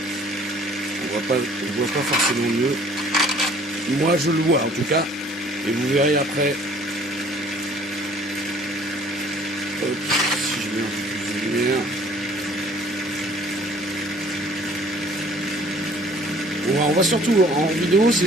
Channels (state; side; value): normal; both; correlation 0.55